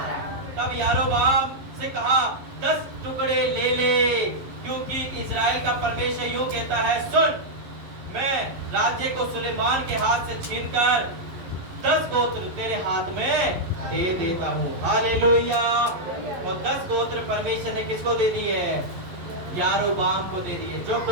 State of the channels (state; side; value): late; left; 11 ms